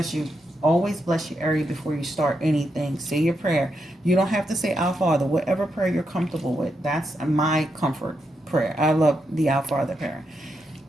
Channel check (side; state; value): both; normal; correlation 0.83